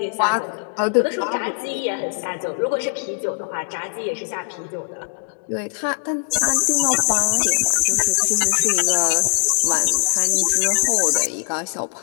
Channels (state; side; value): silent; right; digital silence